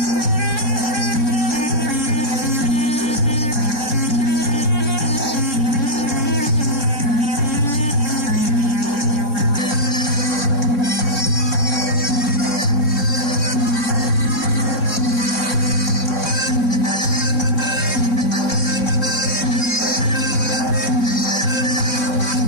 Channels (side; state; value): right; late; 3.6 ms